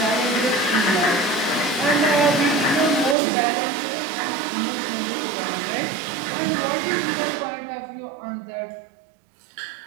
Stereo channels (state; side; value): drops out; left; at 3.2 s